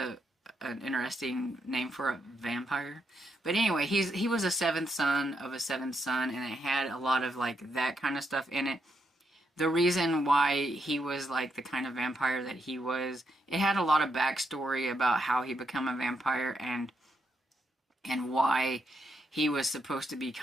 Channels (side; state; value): both; normal; correlation 0.80